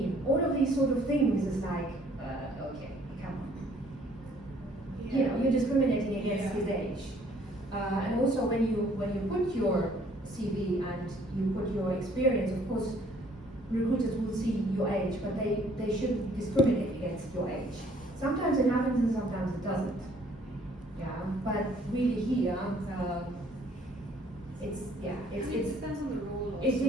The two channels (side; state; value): both; normal; correlation 0.60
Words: All of these sort of things is like, okay, come on. You're discriminating against his age. And also when you put your CV and you put your experience, of course, recruiters will see your age, but they shouldn't discriminate against your age. Sometimes it happens and sometimes it doesn't. But really here, it depends on the role also. It